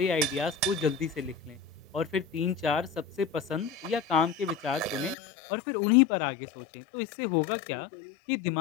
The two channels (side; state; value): right; drops out; at 5.2 s